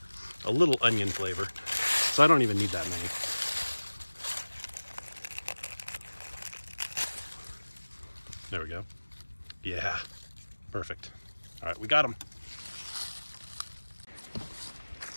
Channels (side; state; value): both; inverted; correlation -1.00